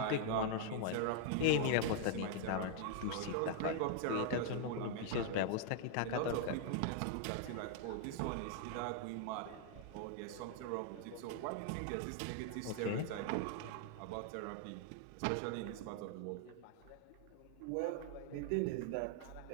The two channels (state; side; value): different; both; correlation 0.00